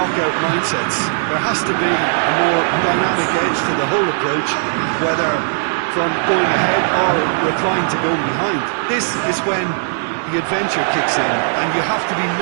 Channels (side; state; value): left; silent; digital silence